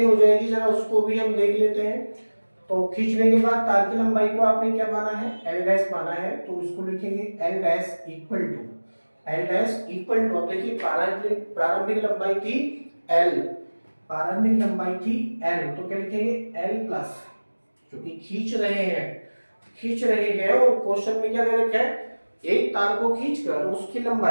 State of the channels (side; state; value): both; inverted; correlation -1.00